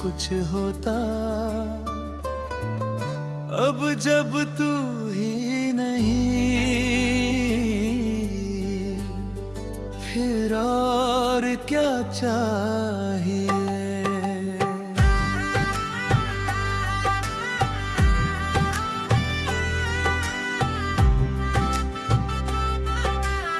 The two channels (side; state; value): both; identical; correlation 1.00